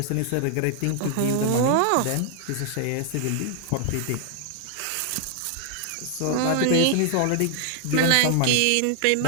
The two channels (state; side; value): different; both; correlation 0.00